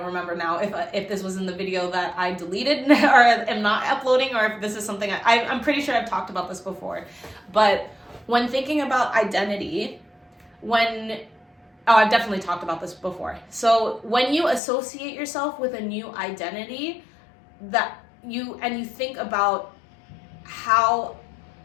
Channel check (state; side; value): drops out; right; at 14.6 s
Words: remember now if this was in the video that I deleted or am not uploading, or if this is something I'm pretty sure I've talked about this before. But when thinking about identity, I've definitely talked about this before. So when you associate yourself with a new identity, you think about how